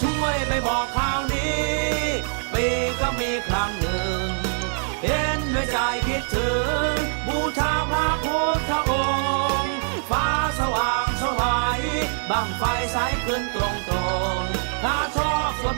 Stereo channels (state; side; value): silent; left; 60 dB below the other